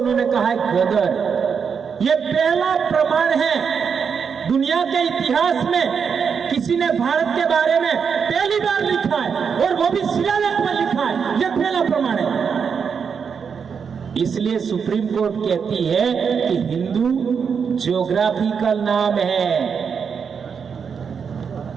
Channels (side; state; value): left; quieter; 6.4 dB